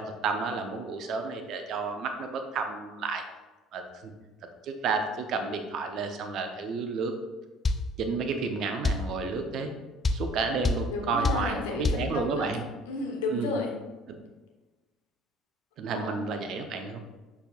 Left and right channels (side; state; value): both; normal; correlation 0.52